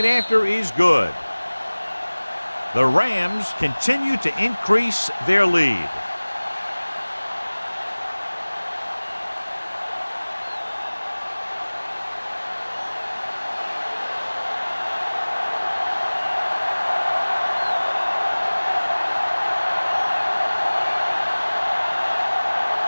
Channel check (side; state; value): both; inverted; correlation -1.00